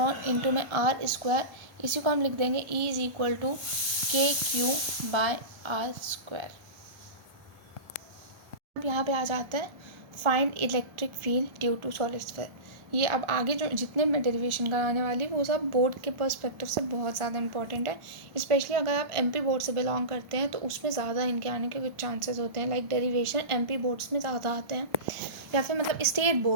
into में r²। इसी को हम लिख देंगे E is equal to KQ by r²। अब यहाँ पे आ जाता है find electric field due to solid sphere. ये अब आगे जो जितने मैं डेरिवेशन कराने वाली वो सब बोर्ड के पर्सपेक्टिव से बहुत ज़्यादा इंपॉर्टेंट है। स्पेशली अगर आप एमपी बोर्ड से बिलोंग करते हैं तो उसमें ज़्यादा इनके आने के कुछ चांसेस होते हैं। लाइक डेरिवेशन एमपी बोर्ड्स में ज़्यादा आते हैं, या फिर मतलब स्टेट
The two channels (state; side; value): late; left; 1.4 ms